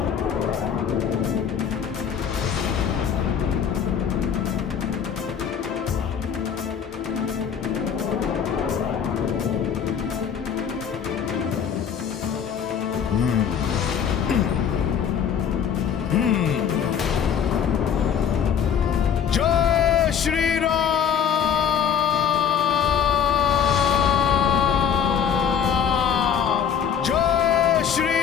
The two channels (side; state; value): right; quieter; 7.9 dB